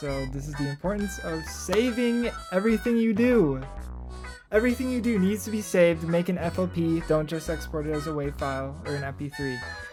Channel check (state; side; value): identical; both; correlation 1.00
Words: this is the importance of saving everything you do. Everything you do needs to be saved. Make an FOP. Don't just export it as a WAV file or an MP3.